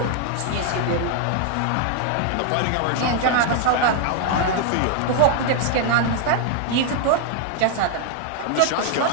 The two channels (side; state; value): both; different; correlation 0.00